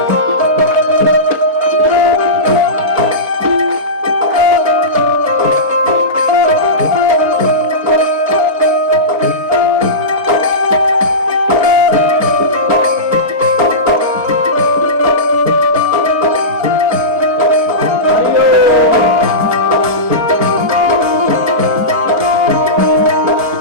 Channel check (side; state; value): left; late; 4.1 ms